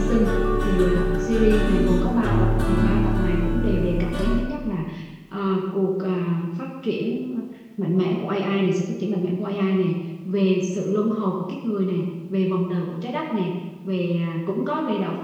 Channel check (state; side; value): identical; both; correlation 1.00